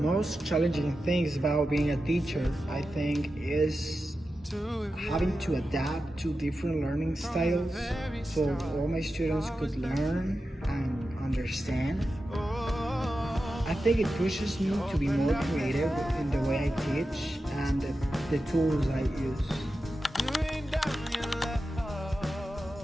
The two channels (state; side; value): normal; both; correlation 0.91